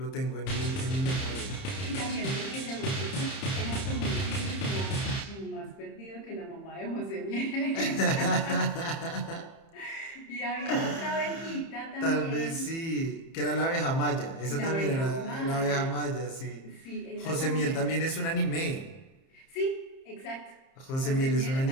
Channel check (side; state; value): right; late; 30 ms